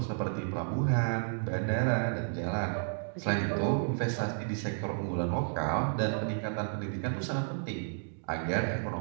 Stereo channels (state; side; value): silent; left; digital silence